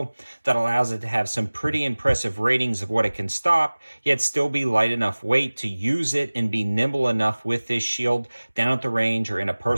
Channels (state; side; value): inverted; both; correlation -1.00